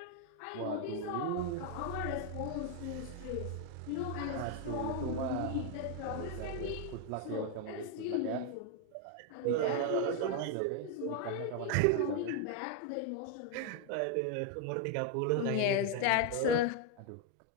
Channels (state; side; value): different; both; correlation 0.01